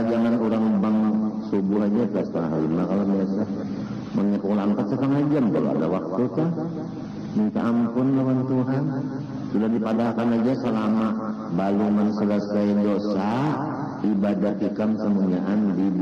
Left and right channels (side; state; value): both; identical; correlation 1.00